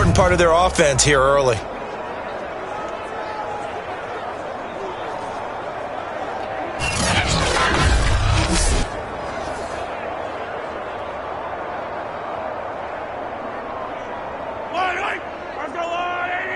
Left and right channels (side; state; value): both; identical; correlation 1.00